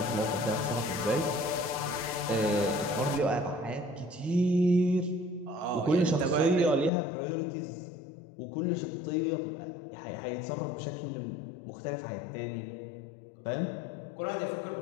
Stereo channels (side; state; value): right; drops out; at 6.9 s